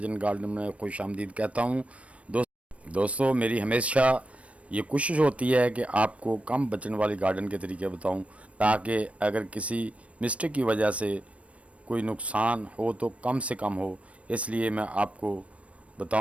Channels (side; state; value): left; late; 0.063 ms